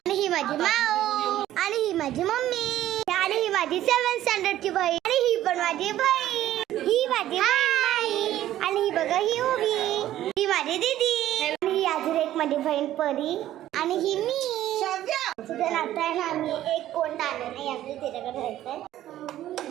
ही माझी माऊ आणि ही माझी मम्मी आणि ही माझी 7th स्टँडर्डची बहीण आणि ही पण माझी बहीण, ही माझी बहीण आणि ही बघा ही उभी, ही माझी दीदी आणि ही अजून एक माझी बहीण परी आणि ही मी. तुझं नातं आहे ना, आम्ही एक कोण आलं नाही, आपल्या तिच्याकडे राहायचंय.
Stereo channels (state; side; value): quieter; left; 13.2 dB